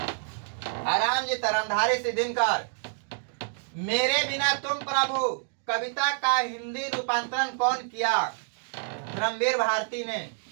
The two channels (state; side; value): silent; left; digital silence